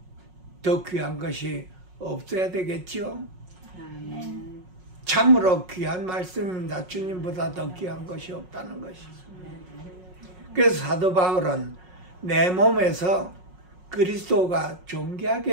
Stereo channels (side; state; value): left; late; 5.5 ms